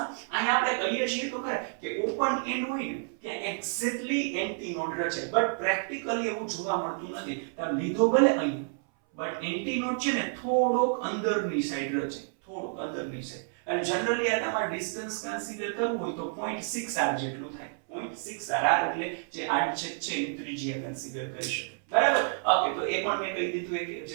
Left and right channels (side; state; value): left; silent; 58 dB below the other